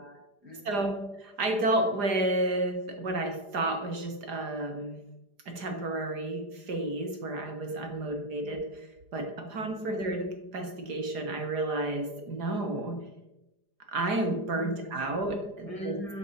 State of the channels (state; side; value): late; left; 4.9 ms